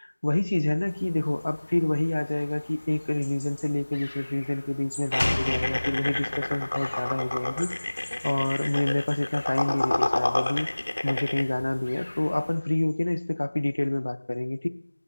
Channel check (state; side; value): inverted; both; correlation -1.00